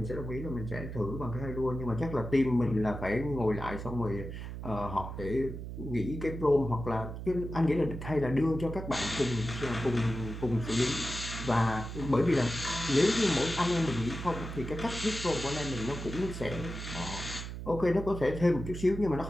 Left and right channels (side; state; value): right; noise; hum, 8 dB below the sound